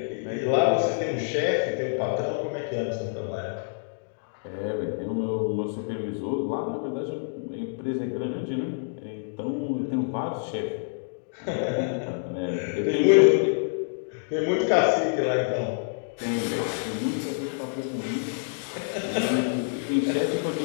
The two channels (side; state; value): right; silent; digital silence